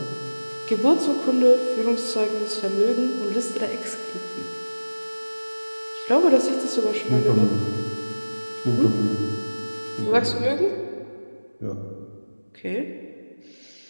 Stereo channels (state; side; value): inverted; both; correlation -1.00